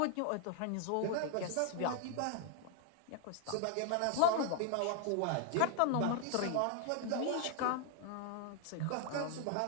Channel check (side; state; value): both; different; correlation 0.00